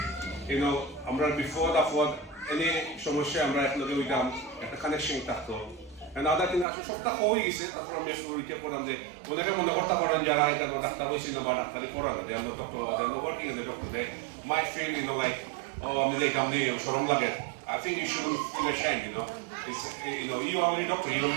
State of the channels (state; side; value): drops out; left; at 6.7 s